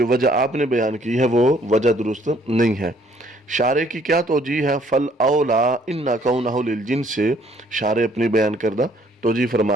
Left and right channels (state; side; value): normal; both; correlation 0.63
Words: وجہ آپ نے بیان کی ہے وہ وجہ درست نہیں ہے۔ شارح کی کیا توجیہ ہے؟ فل اولا ان کونہ للجنس، سے شارح اپنی بیان کردہ توجیہ